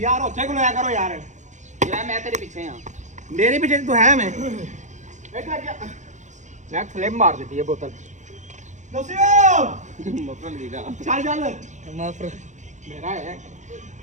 ਉੱਥੇ ਕੋਲ ਆਇਆ ਕਰੋ ਯਾਰ ਯਾਰ ਮੈਂ ਤੇਰੇ ਪਿੱਛੇ ਆ ਮੇਰੇ ਪਿੱਛੇ ਤੂੰ ਹੈ ਮੈਂ ਮੈਂ ਫਲਿਪ ਮਾਰ ਦਿੱਤੀ ਇਹ ਬੋਤਲ ਦੱਸਿਓ ਮਫਰਲ ਵੀਗਾ ਚੱਲ ਚੱਲ ਮਾਫਰ ਮੇਰਾ ਹੈ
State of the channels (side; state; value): left; late; 0.35 ms